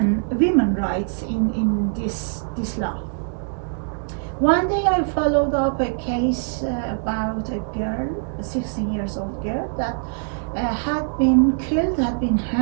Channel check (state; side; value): silent; left; digital silence